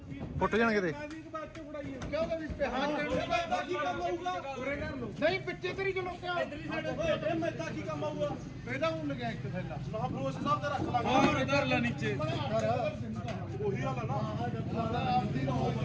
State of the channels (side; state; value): both; identical; correlation 1.00